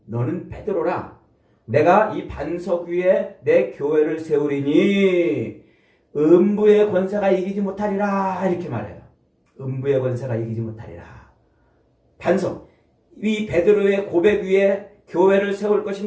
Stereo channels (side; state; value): both; identical; correlation 1.00